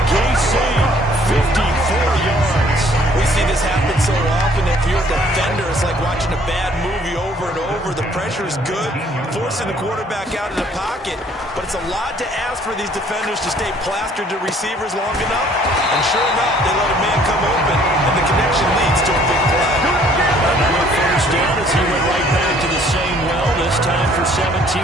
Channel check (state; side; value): normal; both; correlation 0.59